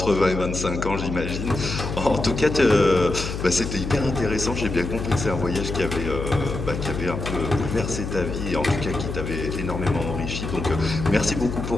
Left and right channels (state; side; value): noise; left; hum, 5 dB below the sound